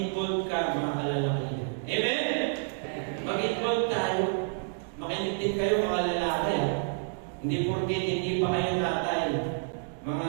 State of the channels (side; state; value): left; silent; digital silence